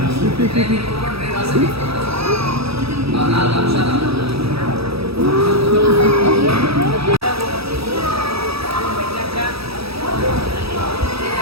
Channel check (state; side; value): late; left; 0.77 ms